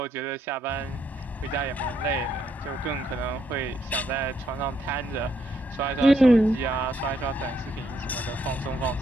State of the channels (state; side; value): normal; both; correlation 0.74